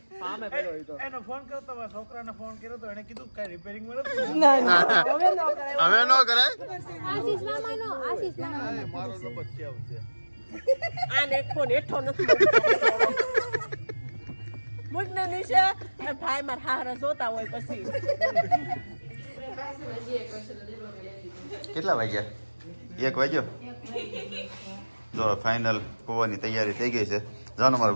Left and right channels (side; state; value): both; inverted; correlation -1.00